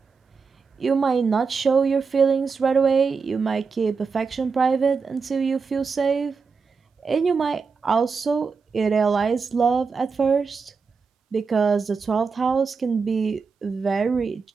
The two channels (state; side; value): quieter; left; 5.1 dB